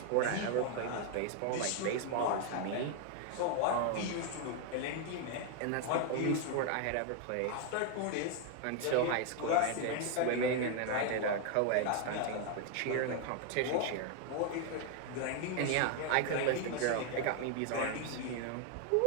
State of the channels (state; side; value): different; both; correlation 0.00